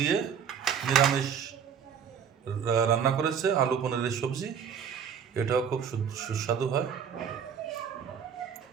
নিরামিষ রান্না করেছে, আলু পনিরের সবজি। এটাও খুব সুস্বাদু হয়।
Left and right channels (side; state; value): left; quieter; 7.5 dB